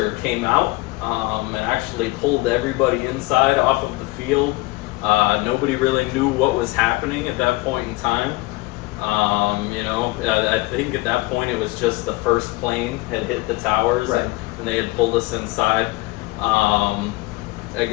came out and actually pulled everybody inside off of the field. Nobody really knew what was happening at that point in time. I think at that point it was just the first plane had hit the towers, right, and they had pulled us inside.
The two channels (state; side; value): quieter; right; 21.9 dB